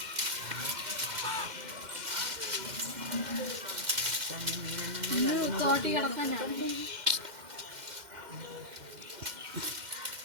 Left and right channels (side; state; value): left; late; 2.1 ms